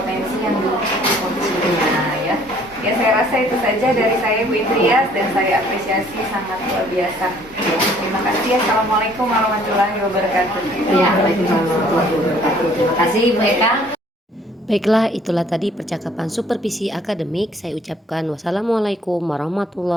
yang di-coachee-nya ya. Ya, saya rasa itu saja dari saya Bu Indrias dan saya apresiasi sangat luar biasa. Terima kasih. Assalamualaikum warahmatullahi wabarakatuh. Ya, Waalaikumsalam warahmatullahi wabarakatuh. Terima kasih Bu Eka. Baiklah, itulah tadi percakapan supervisi akademik. Saya ucapkan wassalamualaikum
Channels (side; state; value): both; normal; correlation 0.58